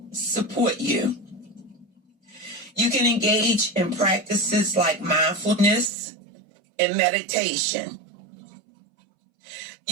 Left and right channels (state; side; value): drops out; left; at 5.9 s